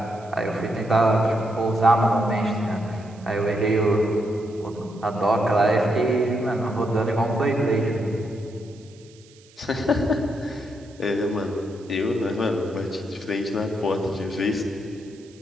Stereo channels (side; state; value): right; noise; hiss, 27 dB below the sound